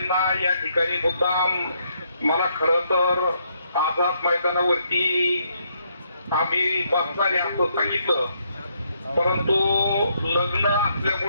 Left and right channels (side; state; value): both; inverted; correlation -0.74